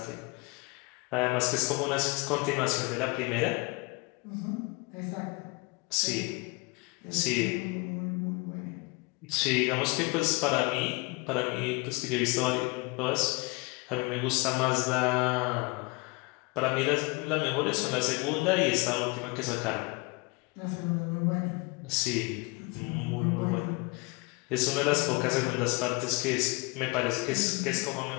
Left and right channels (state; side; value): quieter; right; 27.6 dB